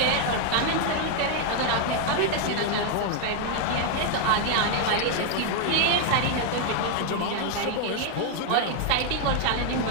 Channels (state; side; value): different; both; correlation 0.00